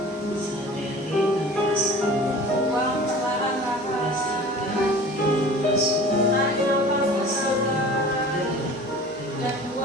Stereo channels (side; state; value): both; normal; correlation 0.42